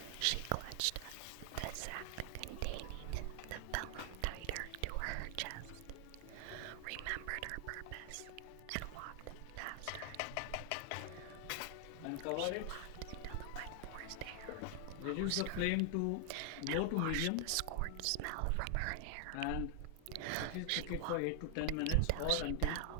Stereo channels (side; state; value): both; different; correlation 0.00